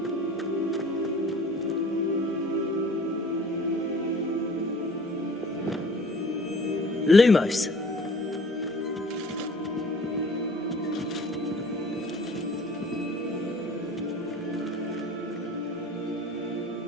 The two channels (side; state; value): both; normal; correlation 0.49